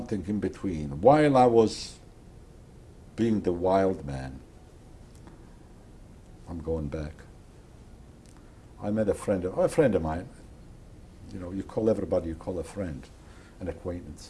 in between. While I was being the wild man, I'm going back. I met a friend of mine. You know, you call everybody, you call a friend, an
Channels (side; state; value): both; identical; correlation 1.00